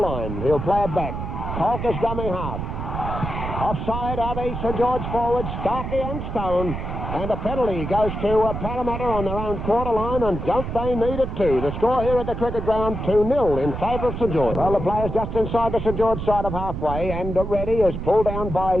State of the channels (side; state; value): right; noise; rumble, 5 dB below the sound